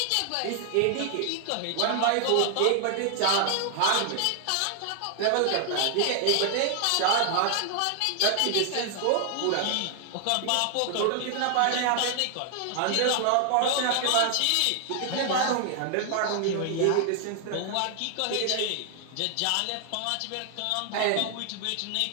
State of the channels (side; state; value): both; different; correlation 0.00